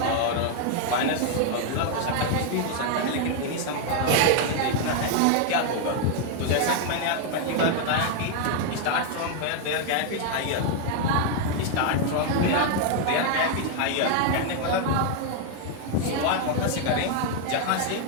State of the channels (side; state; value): both; different; correlation 0.00